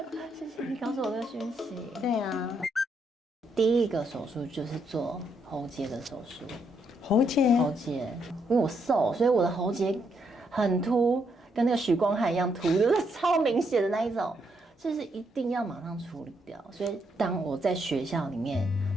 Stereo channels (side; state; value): both; normal; correlation 0.76